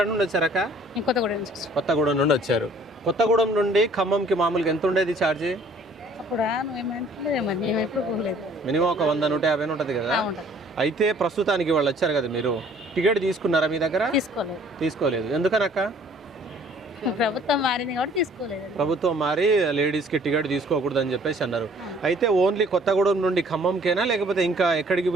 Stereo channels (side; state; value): both; normal; correlation 0.56